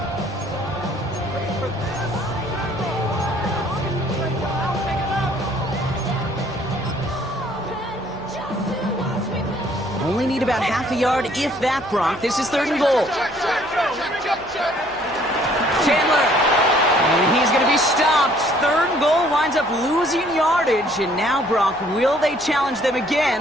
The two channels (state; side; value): noise; right; hum, 24 dB below the sound